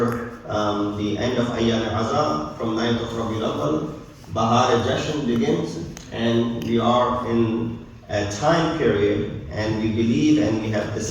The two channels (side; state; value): both; identical; correlation 1.00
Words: the end of Ayyam al-Azam, from 9th of Rabiul Awwal, Bahar Jashan begins, and we are in a time period, and we believe and we have this